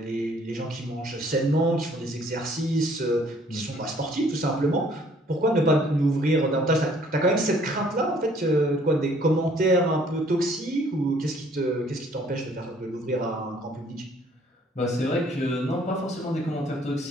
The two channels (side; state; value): both; normal; correlation 0.60